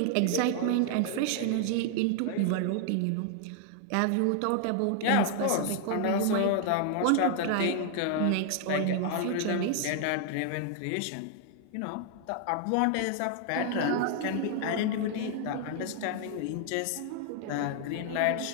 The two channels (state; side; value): different; both; correlation 0.00